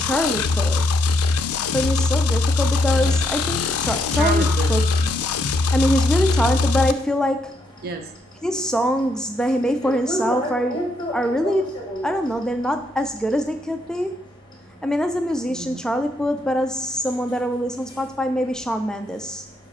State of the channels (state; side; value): normal; both; correlation 0.76